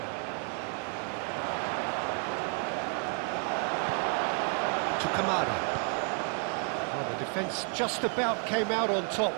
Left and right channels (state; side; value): quieter; left; 39.6 dB